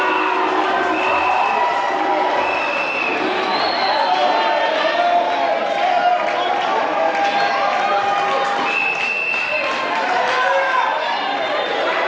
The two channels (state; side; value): identical; both; correlation 1.00